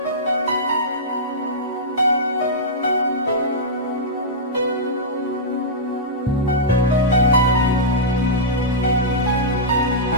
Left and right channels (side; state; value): both; normal; correlation -0.13